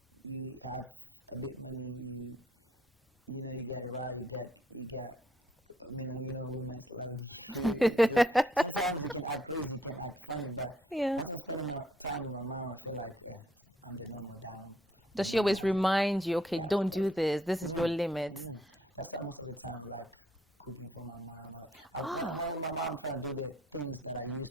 you have a bit money, you know, you get around, you get I mean, you know, women's love you. So sometimes you can act crazy, you can act funny, but once I'm spending my time with my mom, I feel like I'm the normal diamond. Does she always remind you, okay, don't do this, this is your limit? That's why most of the time I like cooking for my mom. When with my mom, I'm trying to do the things that I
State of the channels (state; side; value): normal; both; correlation 0.67